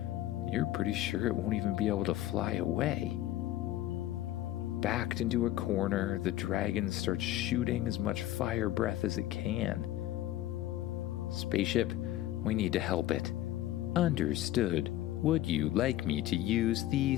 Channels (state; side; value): quieter; right; 14.1 dB